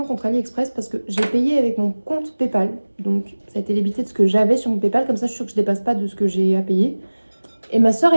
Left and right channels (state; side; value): inverted; both; correlation -1.00